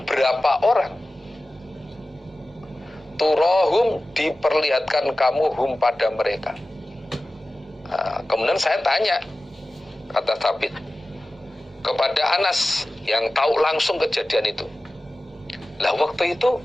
berapa orang, turahum, diperlihatkan kamu, hum, pada mereka. Nah, kemudian saya tanya, kata Sabit, kepada Anas yang tahu langsung kejadian itu, lah waktu itu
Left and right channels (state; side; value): normal; both; correlation 0.96